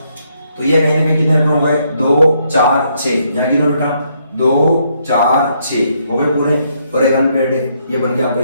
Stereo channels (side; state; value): both; inverted; correlation -0.74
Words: तो ये कहीं ना कहीं कितने इलेक्ट्रॉन हो गए? 2 4 6, यहाँ गिनो बेटा, 2 4 6 हो गए पूरे, और एक अनपेयर्ड है, ये बन गया आपका